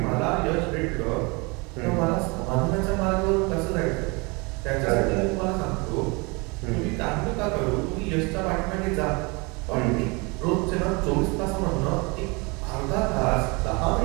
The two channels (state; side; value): quieter; left; 28.1 dB